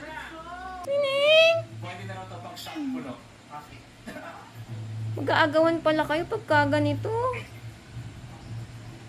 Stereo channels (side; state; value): both; identical; correlation 1.00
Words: Tining! Mag-aagawan pala kayo pagka ganito.